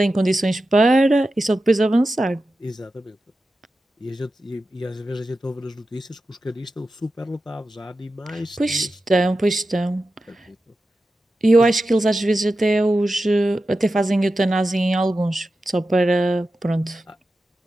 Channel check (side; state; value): both; normal; correlation 0.92